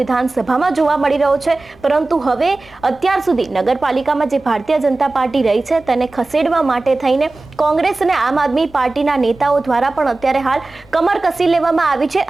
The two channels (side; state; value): left; quieter; 3.2 dB